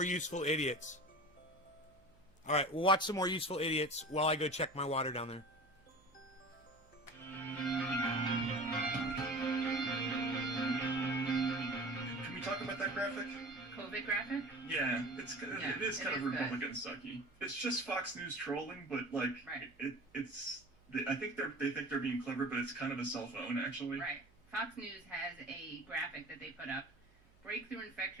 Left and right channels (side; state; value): right; noise; hum, 29 dB below the sound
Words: useful idiots. All right, we'll watch some more useful idiots while I go check my water down there. Can we talk about that graphic? COVID graphic? Yeah, it is kind of good. Republican sucky. It's just Fox News trolling, but like Right. I think they think they're being clever, but it's kind of a cell phone actually. Right. Fox News has a graphic that they put up, breakthrough